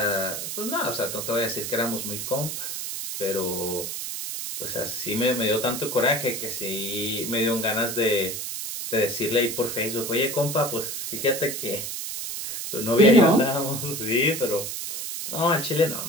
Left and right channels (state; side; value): noise; right; hiss, 5 dB below the sound